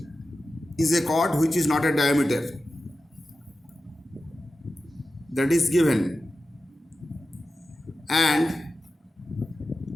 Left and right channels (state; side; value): normal; both; correlation 0.93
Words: is a chord which is not a diameter. That is given. And